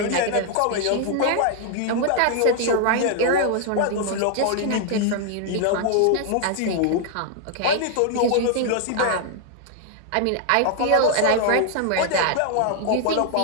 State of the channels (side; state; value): both; different; correlation 0.00